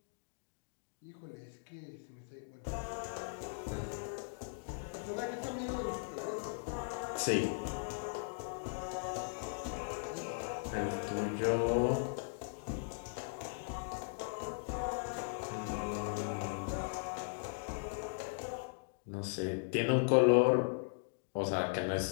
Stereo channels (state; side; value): silent; right; digital silence